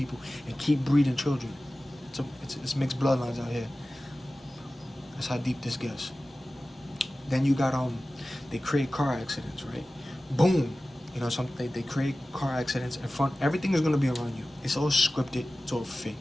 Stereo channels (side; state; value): both; normal; correlation 0.96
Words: and keep breeding children. It's mixed bloodlines out here. That's how deep this gets. Then you got they create car accidents, right? Boom. You know something? They create car accidents in front. Everything is gonna be around you. It's all scripted. It's all fake.